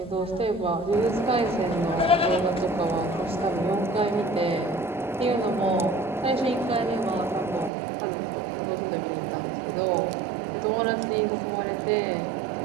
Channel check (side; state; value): left; drops out; at 7.7 s